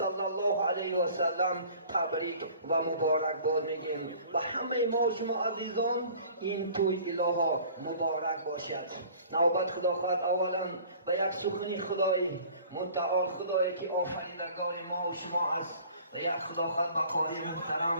الله علیه و سلم تبریک و مبارک باد میگیم و همه ما شما عزیزان این توی الها مبارک باشد. نوبت خدا خواهد اولا به یک سخنی خدای متعال، خدایی که آفریدگار ما و شما است، و یک خدا خواهد به قاری محترم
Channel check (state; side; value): inverted; both; correlation -0.49